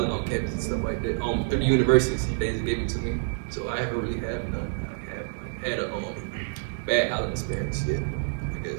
on campus and stuff like that. Through the universities, they just gave it to me. So I haven't really had none. I have like had a bad housing experience yet. I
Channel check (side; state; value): left; silent; digital silence